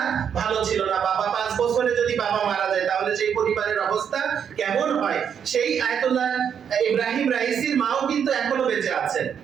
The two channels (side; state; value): left; quieter; 7.9 dB